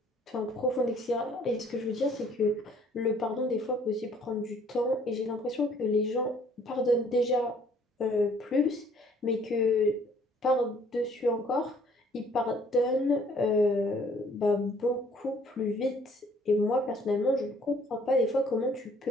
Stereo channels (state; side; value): normal; both; correlation 0.59